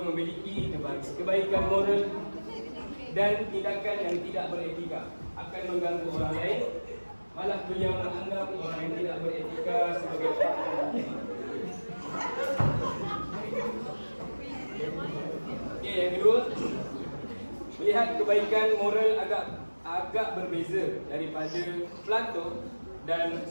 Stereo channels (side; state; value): both; inverted; correlation -1.00